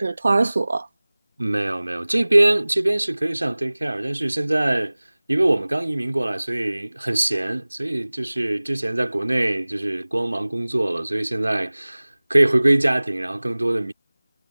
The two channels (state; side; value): inverted; both; correlation -1.00